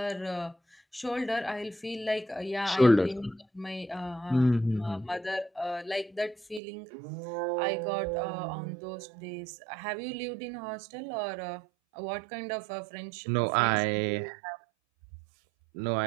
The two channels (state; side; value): drops out; left; at 6.6 s